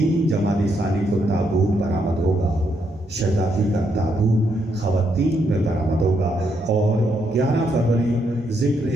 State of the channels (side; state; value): both; normal; correlation 0.77